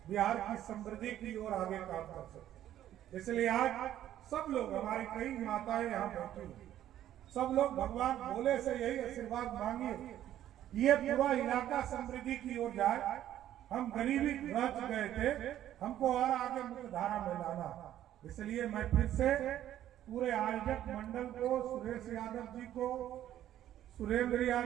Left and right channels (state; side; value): quieter; left; 12.0 dB